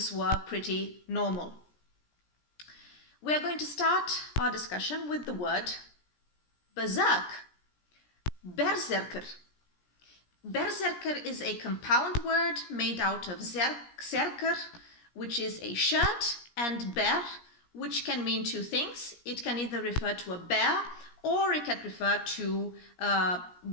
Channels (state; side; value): late; right; 17 ms